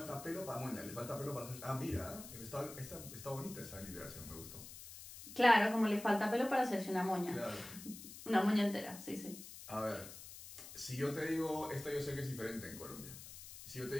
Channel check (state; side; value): noise; left; hiss, 13 dB below the sound